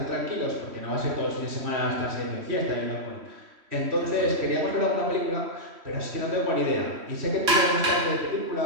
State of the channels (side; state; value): left; late; 3.1 ms